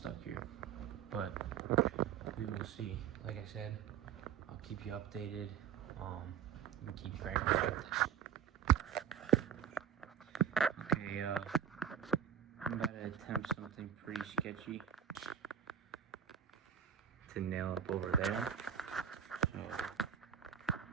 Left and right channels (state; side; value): quieter; left; 8.5 dB